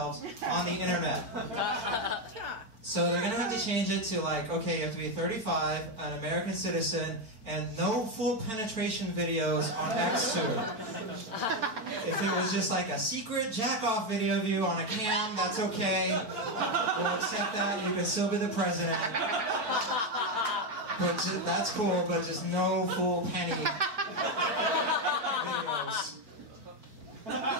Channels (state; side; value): late; left; 4.5 ms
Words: on the internet. So they're going to have to change it to like, okay, you have to be 35, an American citizen, and no full penetration videos on X2. If it was just like a secret jack-off video of you on a cam, that's okay. We'll accept that. You can still be the president. But that's cool, but just no full penny videos.